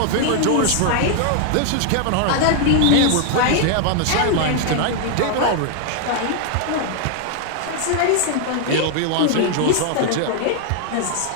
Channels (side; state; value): both; different; correlation 0.00